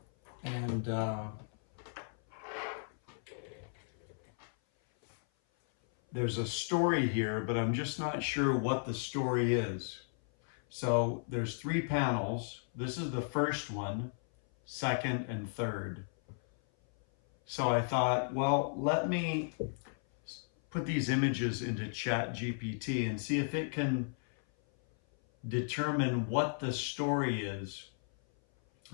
And there's a story here, but I'm just not sure what the story is. So there's 3 panels. This is the first one, second, and third. So I thought, well, let me put these images into ChatGPT and see if it can determine what the story is.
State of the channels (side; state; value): right; silent; 55 dB below the other